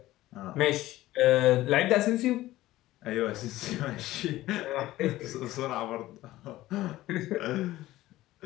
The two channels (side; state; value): right; quieter; 16.2 dB